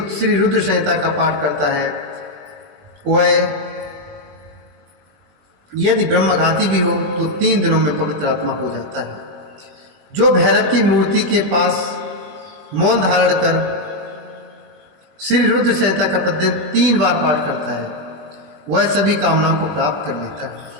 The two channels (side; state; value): left; late; 20 ms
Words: रुद्र संहिता का पाठ करता है वह यदि ब्रह्मघाती भी हो तो 3 दिनों में पवित्र आत्मा हो जाता है। जो भैरव की मूर्ति के पास मौन धारण कर श्री रुद्र संहिता का प्रतिदिन 3 बार पाठ करता है वह सभी कामनाओं को प्राप्त कर लेता है।